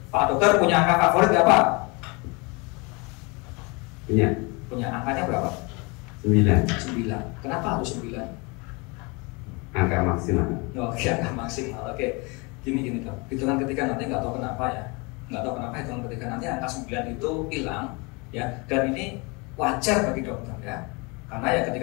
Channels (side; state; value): right; quieter; 28.5 dB